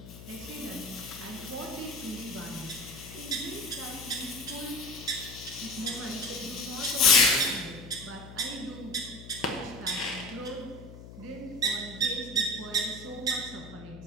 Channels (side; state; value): left; noise; hum, 14 dB below the sound